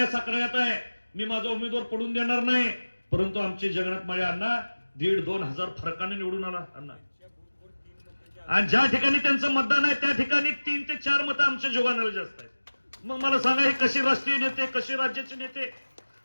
साताऱ्यात आहे, मी माझा उमेदवार पडून देणार नाही. परंतु आमचे जगन्नाथ माळे अण्णा 1,500-2,000 हजार फरकाने निवडून आला अण्णा. आणि ज्या ठिकाणी त्यांचं मतदान आहे त्या ठिकाणी 3 ते 4 मतं आमच्या जोगानाला जास्त आहेत. मग मला सांगा, हे कसे राष्ट्रीय नेते, कसे राज्याचे नेते?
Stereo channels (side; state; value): both; inverted; correlation -1.00